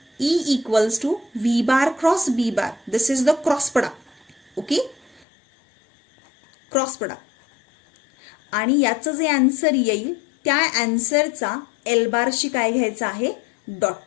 E equals to V bar cross B bar. This is the cross product. Okay, cross product. आणि याचं जे answer येईल त्या आन्सरचा L Barshi काय घ्यायचं आहे, dot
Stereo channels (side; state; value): right; drops out; at 5.2 s